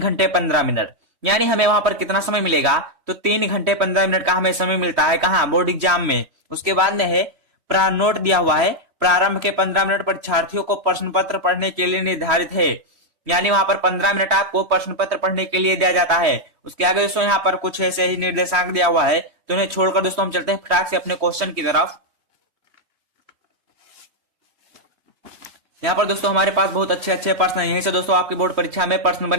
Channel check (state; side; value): late; left; 3.2 ms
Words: 15 मिनट, यानी हमें वहां पर कितना समय मिलेगा। तो 3 घंटे 15 मिनट का हमें समय मिलता है कहाँ, बोर्ड एग्जाम में। उसके बाद में है नोट दिया हुआ है, प्रारंभ के 15 मिनट परीक्षार्थियों को प्रश्न पत्र पढ़ने के लिए निर्धारित है, यानी वहां पर 15 मिनट आपको प्रश्न पत्र पढ़ने के लिए दिया जाता है। उसके आगे दोस्तों यहाँ पर कुछ ऐसे ही निर्देशांक दिया हुआ है। तो उन्हें छोड़कर दोस्तों हम चलते हैं फटाक से अपने क्वेश्चन की तरफ। यहाँ पर दोस्तों हमारे पास बहुत अच्छे अच्छे प्रश्न हैं, यहीं से दोस्तों आपकी बोर्ड परीक्षा में प्रश्न